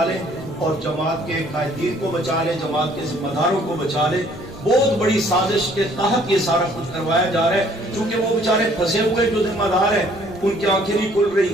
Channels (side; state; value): both; normal; correlation 0.60